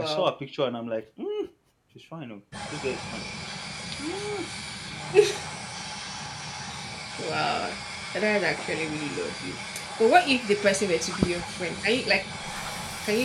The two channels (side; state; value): both; identical; correlation 1.00